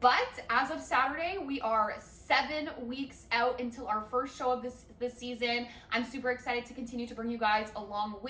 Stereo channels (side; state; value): both; identical; correlation 1.00